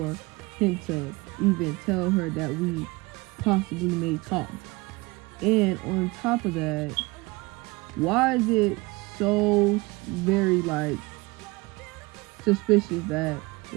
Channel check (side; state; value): left; quieter; 24.0 dB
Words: him to even tell her that we possibly may talk. And on top of that, why is it so very like suspicious that